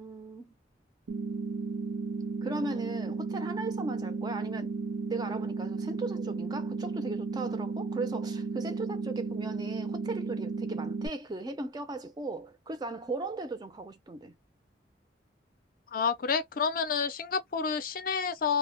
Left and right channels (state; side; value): normal; both; correlation 0.28